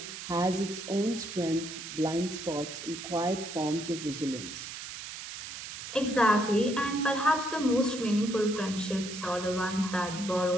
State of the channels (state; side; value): noise; right; hiss, 9 dB below the sound